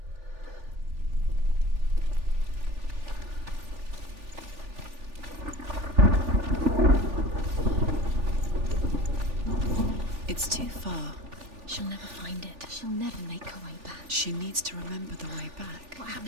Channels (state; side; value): late; left; 3.4 ms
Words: It's too far. She'll never find it. She'll never make her way back. She needs to remember the way back. What